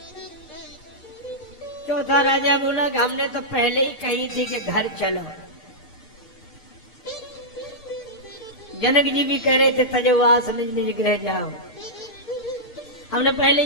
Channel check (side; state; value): right; late; 6.6 ms